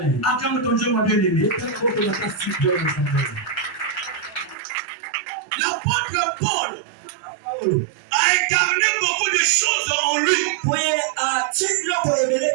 ton Dieu, mon bien-aimé. L'apôtre Paul a incarné beaucoup de choses en lui.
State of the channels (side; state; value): left; drops out; at 4.5 s